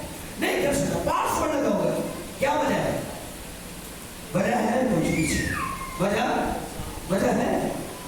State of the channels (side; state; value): both; identical; correlation 1.00